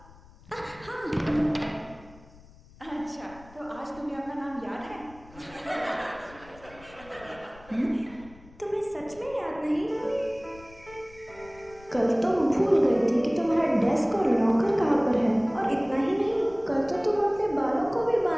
अच्छा, तो आज तुम्हें अपना नाम याद है? तुम्हें सच में याद नहीं? कल तुम भूल गई थी कि तुम्हारा डेस्क और लॉकर कहाँ पर है। और इतना ही नहीं, कल तो तुम अपने बालों को भी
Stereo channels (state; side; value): noise; left; rumble, 23 dB below the sound